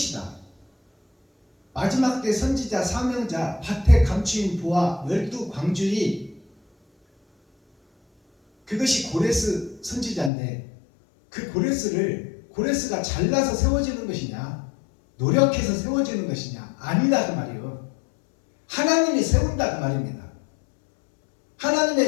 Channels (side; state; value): right; drops out; at 10.3 s